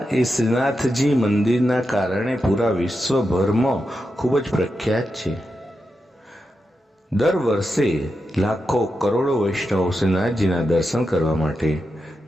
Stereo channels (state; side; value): normal; both; correlation 0.88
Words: એ શ્રીનાથજી મંદિરના કારણે પૂરા વિશ્વભરમાં ખૂબ જ પ્રખ્યાત છે. દર વર્ષે લાખો કરોડો વૈષ્ણવો શ્રીનાથજીના દર્શન કરવા માટે